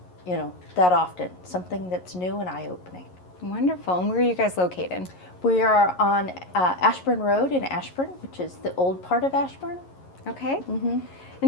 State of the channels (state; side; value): late; right; 11 ms